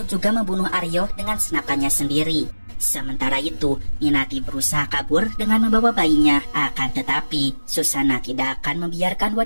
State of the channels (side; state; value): both; inverted; correlation -1.00